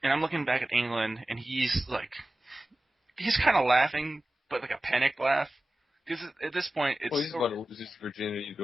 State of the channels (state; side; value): normal; both; correlation 0.96